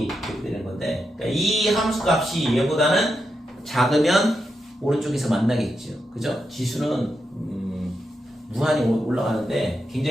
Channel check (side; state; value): both; normal; correlation 0.85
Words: 이렇게 되는 건데, 그러니까 이 함수 값이 얘보다는 작으면 오른쪽에서 만나겠죠. 그죠? 지수는 무한히 올라가는데